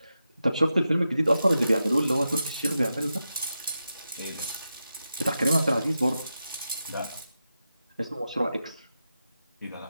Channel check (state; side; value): inverted; both; correlation -0.89